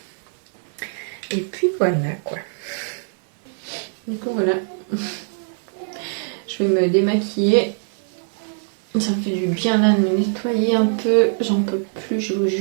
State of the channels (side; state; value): left; silent; digital silence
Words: Et puis voilà quoi. Du coup voilà. Je vais me démaquiller. Ça me fait du bien là de me nettoyer un peu. J'en peux plus, je vous